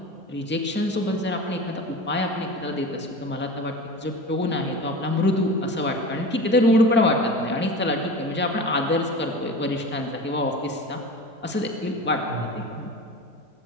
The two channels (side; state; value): both; normal; correlation 0.32